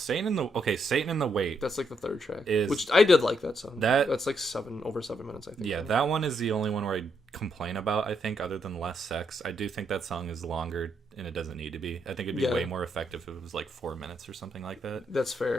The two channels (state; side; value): normal; both; correlation 0.77